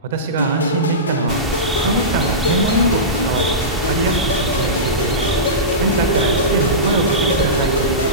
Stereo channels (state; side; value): normal; both; correlation -0.18